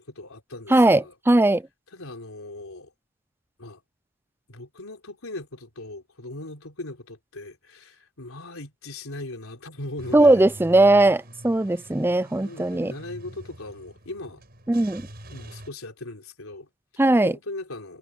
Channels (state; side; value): normal; both; correlation 0.85